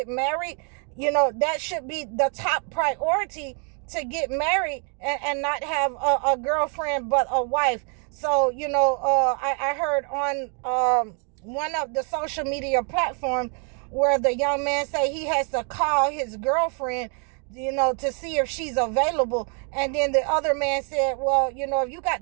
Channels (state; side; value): quieter; left; 39.3 dB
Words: married. That should be the top priority, to get married and not have a girlfriend but a wife. So, I heard on one of the social media platforms where the young man say he has to call his girlfriend, to see if she's available. And then the other man said, well, if you got